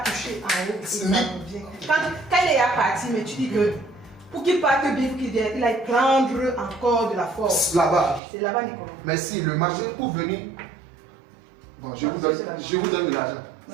touché en haut. Ça revient. Quand il est parti, mais tu dis que pour qu'il parte bien, il a prendre encore de la force. Là-bas. C'est là-bas Nicolo. Mais si le marché pour venir. Bon, je vous donne de l'argent.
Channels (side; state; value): left; drops out; at 8.2 s